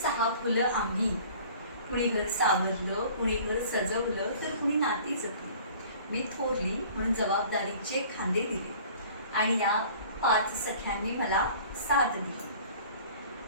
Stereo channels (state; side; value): inverted; both; correlation -0.48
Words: फुलं आम्ही. कुणी घर सावरलं, कुणी घर सजवलं, तर कुणी नाती जपली. मी थोरली म्हणून जबाबदारीचे खांदे दिले आणि या 5 सख्यांनी मला साथ दिली.